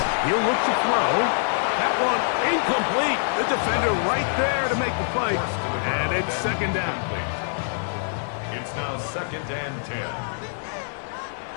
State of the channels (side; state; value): right; silent; digital silence